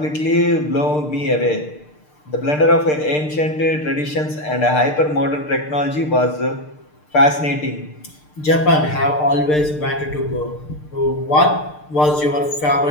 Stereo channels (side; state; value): right; late; 6.7 ms